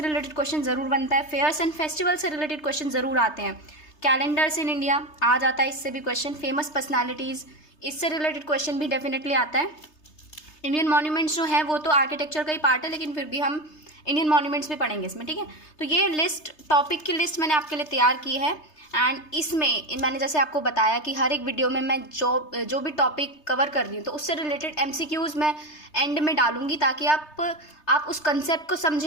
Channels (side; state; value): right; late; 3.3 ms